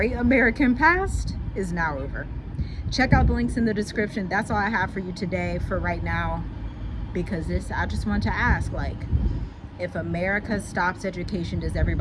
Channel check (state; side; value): identical; both; correlation 1.00